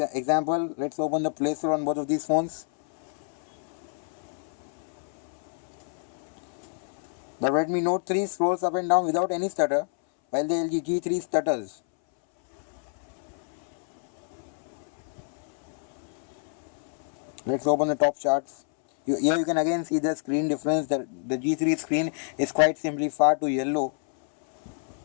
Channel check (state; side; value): silent; right; 60 dB below the other